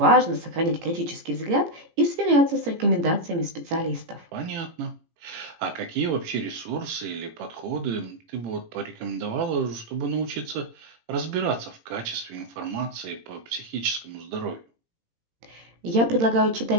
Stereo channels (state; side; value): late; left; 18 ms